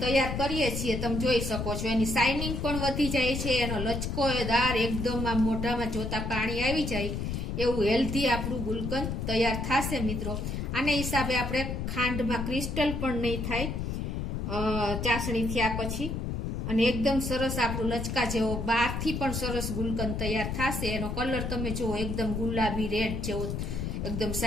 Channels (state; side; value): noise; left; rumble, 3 dB below the sound